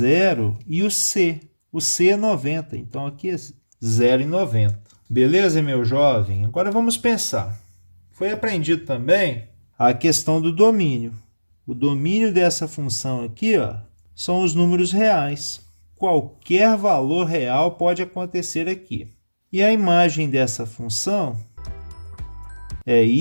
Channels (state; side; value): inverted; both; correlation -1.00